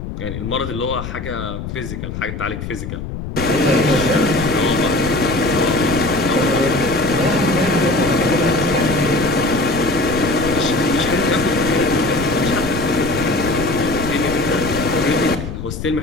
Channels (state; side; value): noise; left; rumble, 7 dB below the sound